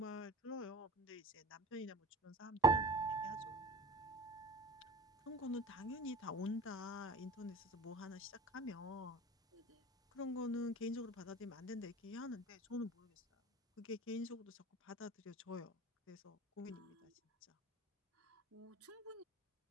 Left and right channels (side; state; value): both; normal; correlation 0.37